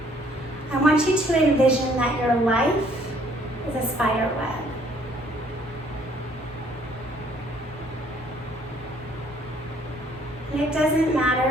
I want you to envision that your life is a spider web. And it doesn't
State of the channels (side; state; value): both; normal; correlation 0.62